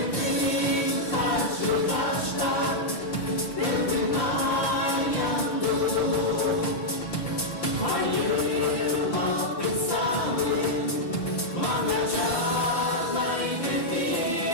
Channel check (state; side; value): late; right; 5.8 ms